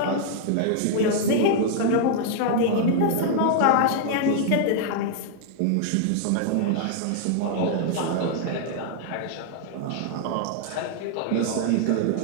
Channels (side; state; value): both; different; correlation -0.01